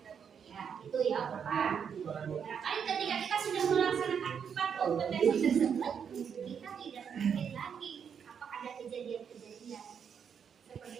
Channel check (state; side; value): quieter; left; 7.3 dB